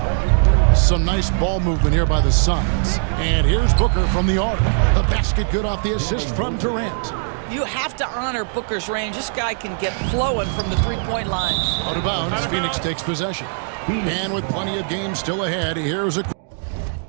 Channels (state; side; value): silent; left; digital silence